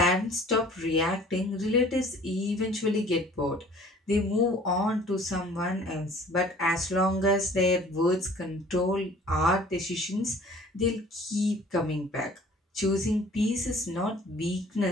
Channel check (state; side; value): normal; both; correlation 0.50